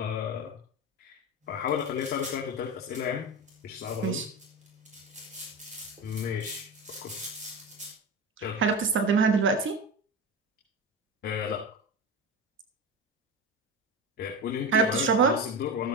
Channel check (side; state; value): both; normal; correlation 0.24